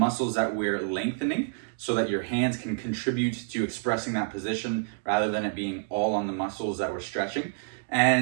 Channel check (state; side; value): silent; left; digital silence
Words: that we're lengthening so that your hands can contribute to expressing that position rather than it being all on the muscles that we're stretching.